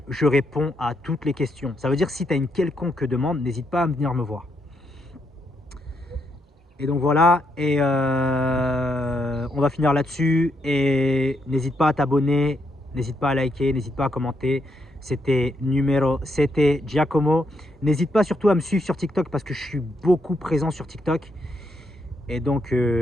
je réponds à toutes les questions. Ça veut dire que si tu as une quelconque demande, n'hésite pas à venir me voir. Et donc voilà, et on va finir là-dessus. Et n'hésite pas à t'abonner, n'hésite pas à liker, n'hésite pas à commenter. C'était Giacomo. N'hésite pas surtout à me suivre sur TikTok parce que je suis beaucoup présent sur TikTok. Et donc,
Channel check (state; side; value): normal; both; correlation 0.78